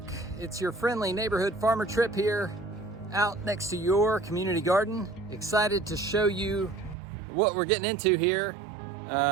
it's your friendly neighborhood farmer trip here out next to your community garden. Excited to show you what we're getting into here,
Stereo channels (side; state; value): left; drops out; at 7.0 s